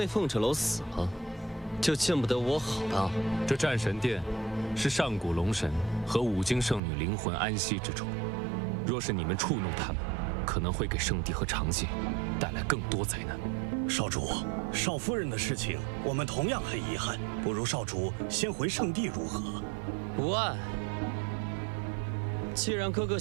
凤赭楼死了，就见不得我好的。这战神殿是上古龙神和五经圣女灵魂安息之处，若是你们触怒他们，可能会给圣地和长界带来更多灾难。少主，少夫人的事情我们同样很遗憾，不如少主先回圣地如何？无碍。既然哥哥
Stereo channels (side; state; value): left; drops out; at 6.8 s